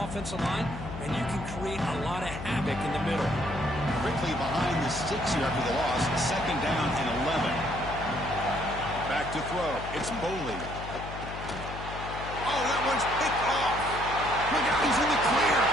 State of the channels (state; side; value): noise; left; hum, 9 dB below the sound